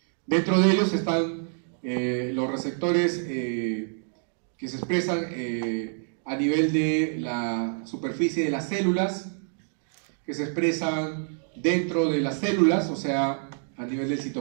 Dentro de ellos están los receptores que se expresan a nivel de la superficie de las células, que se expresan dentro de las células, o sea, a nivel del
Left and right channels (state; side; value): silent; left; digital silence